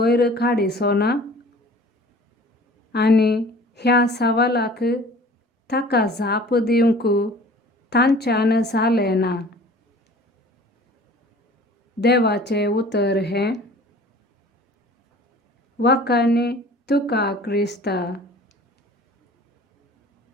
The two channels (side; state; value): both; normal; correlation 0.47